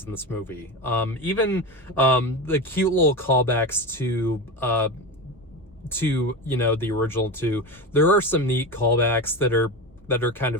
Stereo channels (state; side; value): normal; both; correlation 0.22